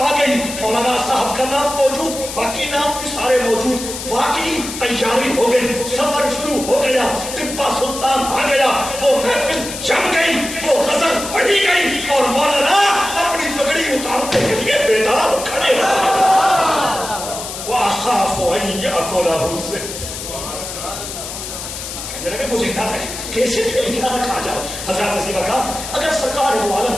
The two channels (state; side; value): noise; left; hiss, 8 dB below the sound